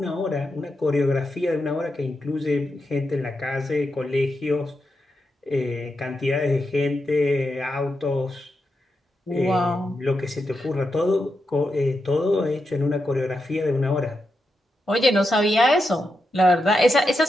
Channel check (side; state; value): both; normal; correlation 0.86